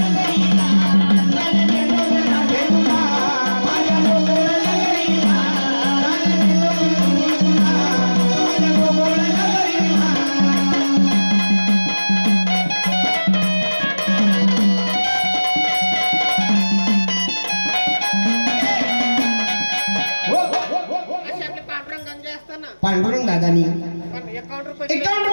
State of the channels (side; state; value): both; inverted; correlation -1.00